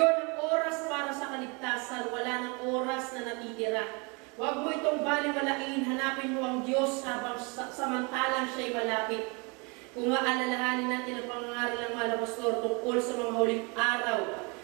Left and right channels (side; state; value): left; quieter; 30.8 dB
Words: ang oras para sa kaligtasan, wala ng oras na natitira. Huwag mo itong baliwalain, hanapin mo ang Diyos habang samantalang siya'y malapit. Kung maalalahanin natin ang pangangaral ng mga pastor tungkol sa mga huling araw,